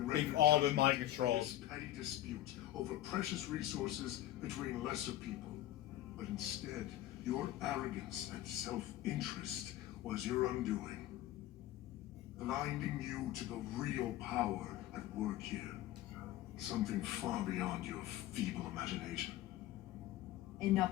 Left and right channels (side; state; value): right; quieter; 14.1 dB